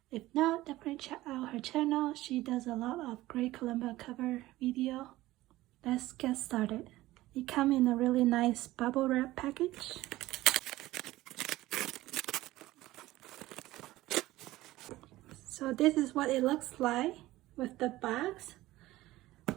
If not, definitely check out her channel. She does a lot of great kalimba cover video. Let's get started. It comes in a really nice bubble wrap package. So this is what it looks like with the box.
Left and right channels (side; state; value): left; quieter; 17.1 dB